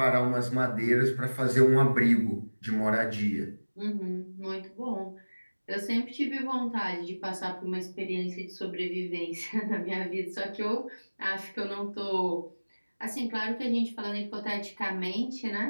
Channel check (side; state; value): both; inverted; correlation -1.00